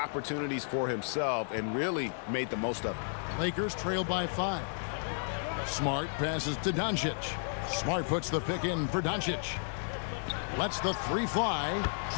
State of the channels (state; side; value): silent; right; digital silence